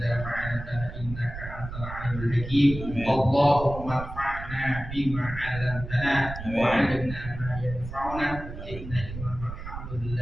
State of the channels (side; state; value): right; noise; rumble, 10 dB below the sound